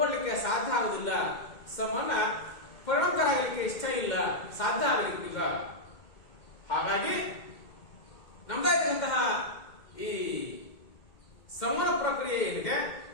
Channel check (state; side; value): late; right; 2.1 ms